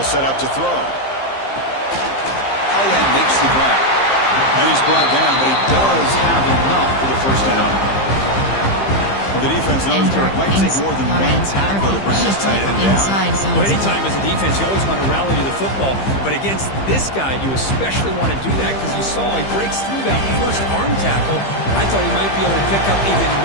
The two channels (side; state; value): right; late; 15 ms